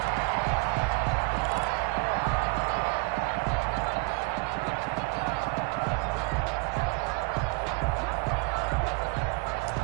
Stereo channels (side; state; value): left; quieter; 27.7 dB